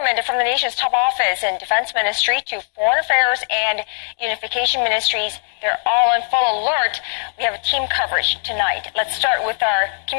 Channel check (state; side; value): silent; right; digital silence